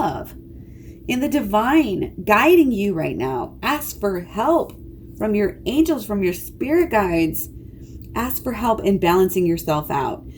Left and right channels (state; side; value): identical; both; correlation 1.00